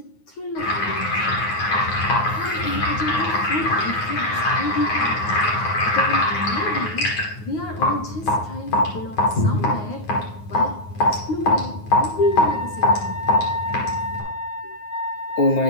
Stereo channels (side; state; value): right; late; 9.5 ms